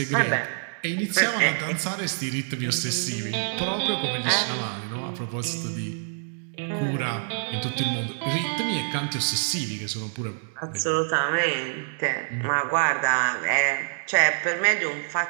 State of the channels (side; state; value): left; silent; digital silence